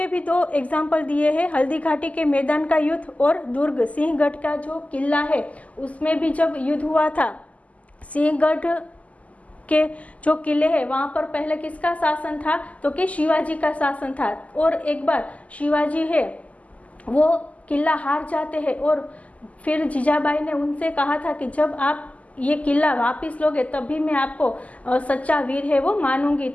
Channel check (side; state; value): right; late; 0.071 ms